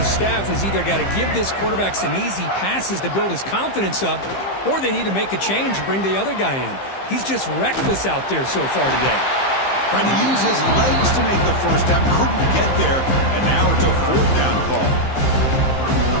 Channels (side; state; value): right; late; 15 ms